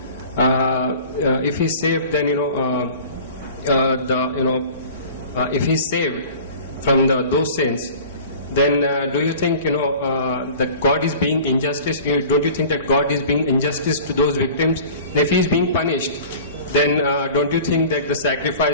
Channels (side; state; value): both; inverted; correlation -0.42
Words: if he's saved, then if he's saved from those sins, then do you think that God is being injustice? Don't you think that God is being injustice to those victims? And if he is being punished, then don't you think that the